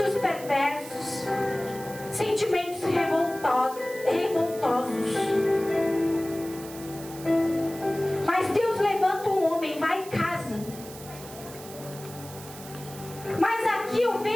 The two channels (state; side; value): noise; right; hiss, 16 dB below the sound